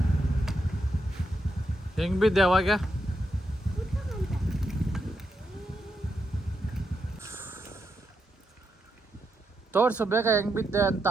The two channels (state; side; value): normal; both; correlation 0.83